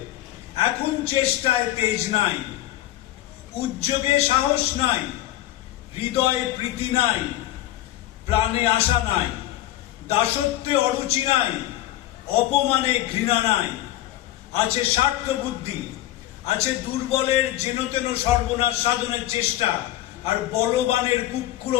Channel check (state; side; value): quieter; right; 14.6 dB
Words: এখন চেষ্টায় তেজ নাই, উদ্যোগে সাহস নাই, হৃদয়ে প্রীতি নাই, প্রাণে আশা নাই, দাসত্বে অরুচি নাই, অপমানে ঘৃণা নাই। আছে স্বার্থ বুদ্ধি, আছে দুর্বলের যেনতেন সর্বনাশ সাধনের চেষ্টা, আর বলবানের